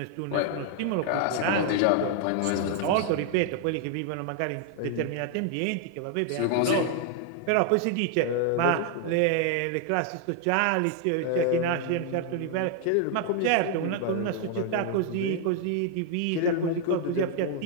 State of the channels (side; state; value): both; different; correlation 0.00